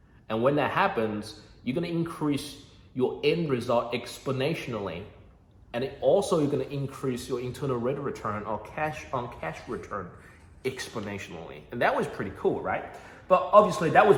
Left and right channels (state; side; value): identical; both; correlation 1.00